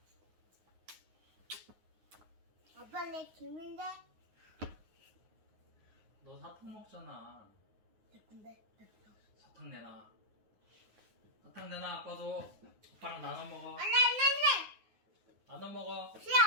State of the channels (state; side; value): late; left; 9.5 ms